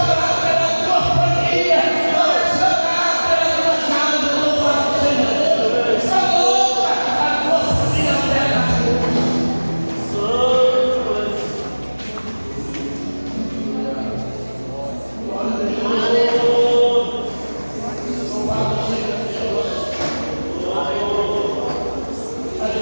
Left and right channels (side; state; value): both; inverted; correlation -1.00